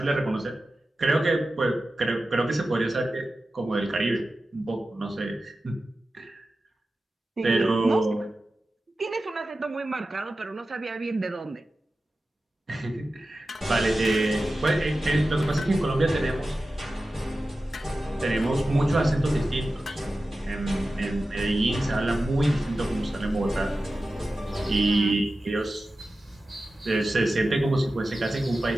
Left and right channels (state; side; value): normal; both; correlation 0.94